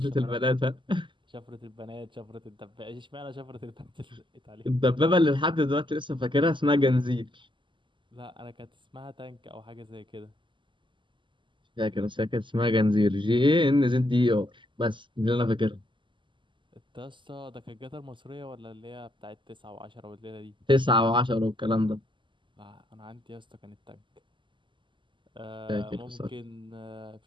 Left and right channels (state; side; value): late; left; 0.24 ms